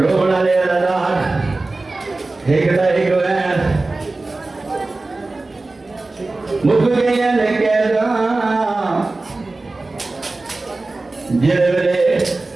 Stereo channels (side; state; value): left; quieter; 3.3 dB